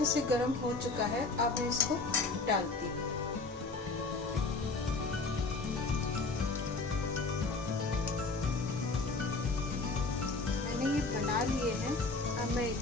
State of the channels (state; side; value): quieter; right; 3.7 dB